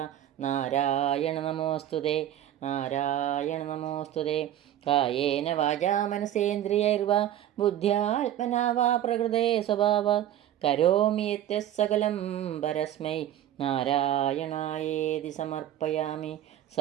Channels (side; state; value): left; quieter; 11.8 dB